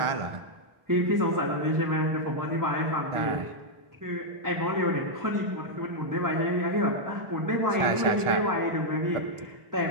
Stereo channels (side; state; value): left; late; 1.4 ms